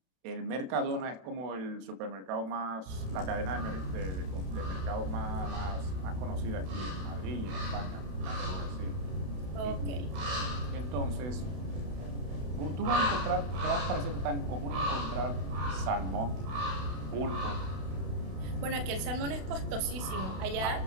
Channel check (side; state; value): left; late; 31 ms